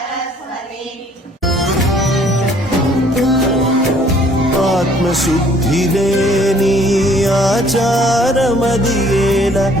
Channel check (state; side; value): normal; both; correlation 0.59